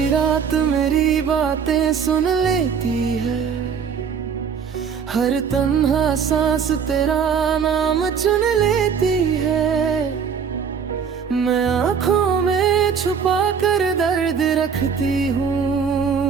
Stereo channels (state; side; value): quieter; left; 6.7 dB